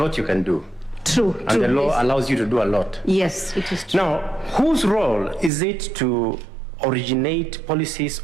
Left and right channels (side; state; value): left; drops out; at 5.5 s